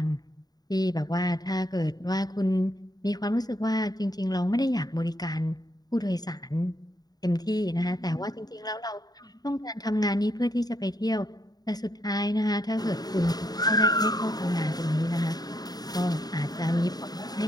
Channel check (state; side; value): late; right; 0.19 ms